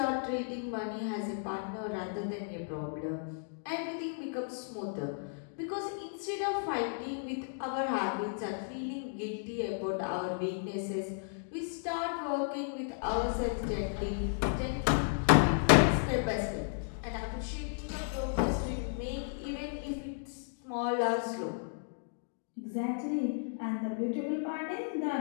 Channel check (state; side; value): silent; right; digital silence